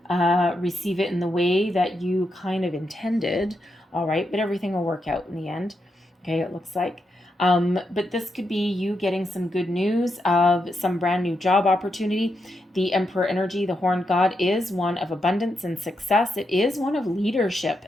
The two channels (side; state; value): both; normal; correlation 0.84